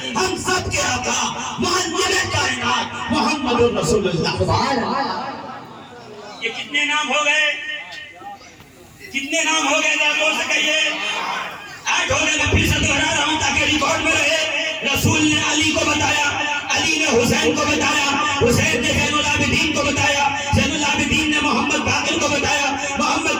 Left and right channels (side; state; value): both; identical; correlation 1.00